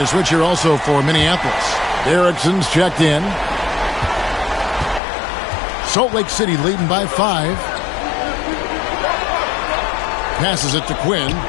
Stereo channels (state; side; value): drops out; right; at 5.0 s